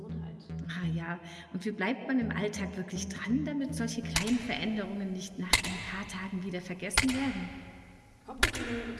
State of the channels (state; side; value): identical; both; correlation 1.00